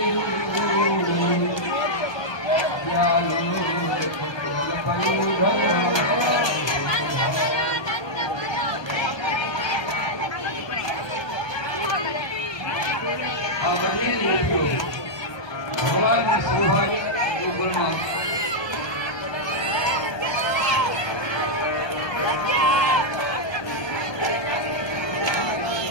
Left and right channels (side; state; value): right; late; 1.2 ms